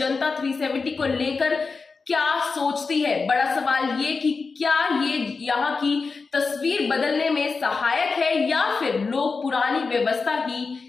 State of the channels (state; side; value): quieter; right; 4.5 dB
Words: 370 को लेकर क्या सोचती है। बड़ा सवाल ये कि क्या ये यहाँ की तस्वीर बदलने में सहायक है या फिर लोग पुरानी व्यवस्था ही